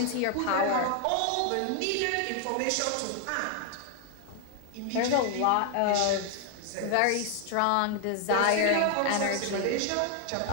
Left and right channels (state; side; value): different; both; correlation 0.00